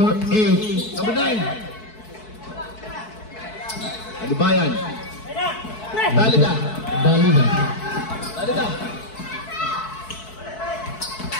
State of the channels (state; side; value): late; right; 4.6 ms